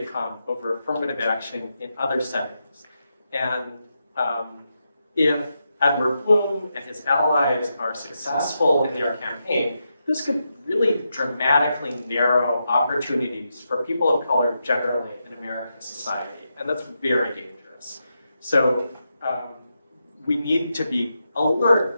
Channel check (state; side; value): inverted; both; correlation -0.86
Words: come over affirmative action in other settings. And if Edward Bloom and his allies are successful in their campaign, this could really dramatically narrow opportunities for people of color generally in American society, and that's very dangerous. So we need to be